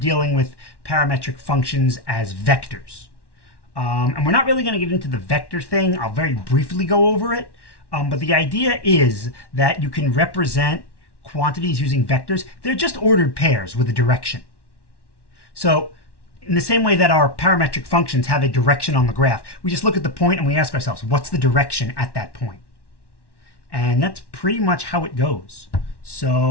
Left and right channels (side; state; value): right; late; 1.1 ms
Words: dealing with parametric functions as vectors. And we're not really going to get into the vector thing. I'll very briefly go over it. But the idea is that you can represent quantities using vectors. They're just ordered pairs with a direction. So in the same way that our parametric functions have a direction on the graph, we just look at the point and we ask ourselves, what's the direction at that point? And that's pretty much how it goes.